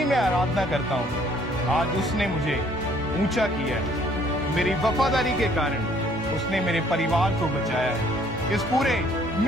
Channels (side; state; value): both; normal; correlation 0.61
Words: मैं आराधना करता हूँ, आज उसने मुझे ऊंचा किया है। मेरी वफादारी के कारण उसने मेरे परिवार को बचाया है, इस पूरे